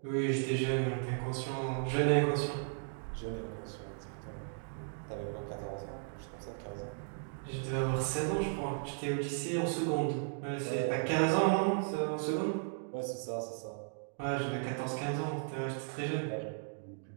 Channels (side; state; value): left; silent; digital silence